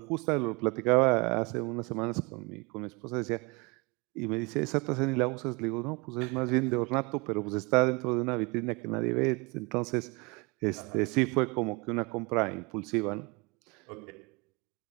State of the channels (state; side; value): quieter; left; 27.9 dB